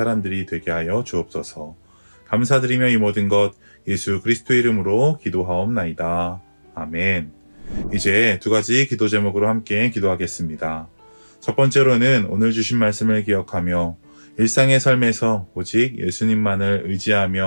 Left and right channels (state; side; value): inverted; both; correlation -1.00